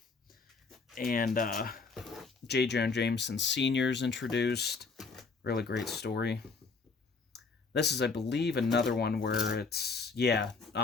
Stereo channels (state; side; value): quieter; right; 4.5 dB